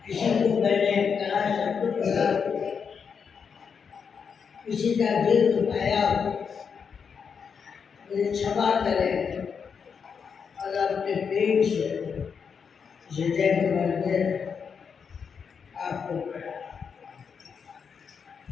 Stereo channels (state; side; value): quieter; right; 6.4 dB